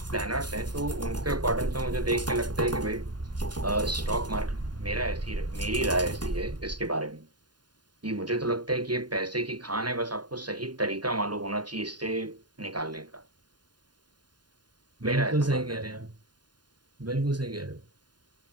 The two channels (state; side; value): late; left; 0.70 ms